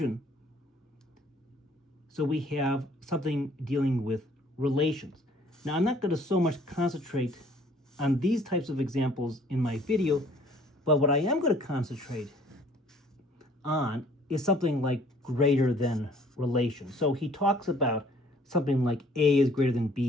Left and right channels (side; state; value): both; normal; correlation 0.57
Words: So we have something dealing with relations. Now, I'm not going to so much concentrate on these types of examples in my video, but what I am going to concentrate on is something like greater than relation. So he talks about something like A is greater than